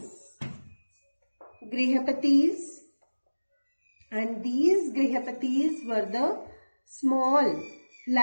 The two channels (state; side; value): inverted; both; correlation -1.00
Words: And these grihapatis were the small